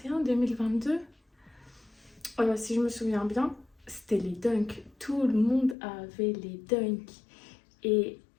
2022... si je me souviens bien, c'était les dunks. Tout le monde avait les dunks. Et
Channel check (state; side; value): drops out; right; at 5.8 s